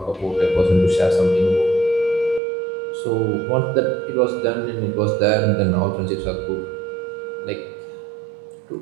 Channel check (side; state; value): left; drops out; at 2.4 s